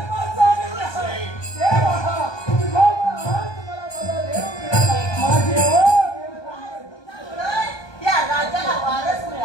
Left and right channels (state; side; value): late; right; 1.2 ms